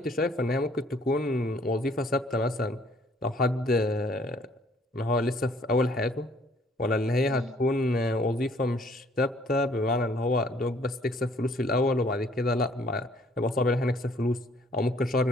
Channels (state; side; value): normal; both; correlation 0.61